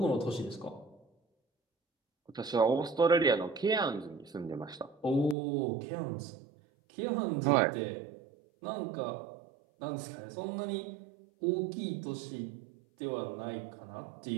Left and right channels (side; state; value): left; drops out; at 5.4 s